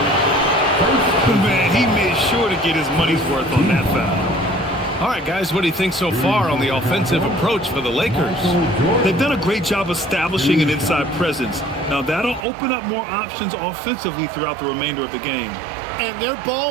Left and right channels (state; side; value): drops out; left; at 12.5 s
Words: Man, he made sure to get his money's worth on that foul. All right, guys, what do you think so far on the offensive approach for the Lakers? They've done a great job establishing an inside presence. Now, that'll open up more options offensively throughout the remainder of the game. And their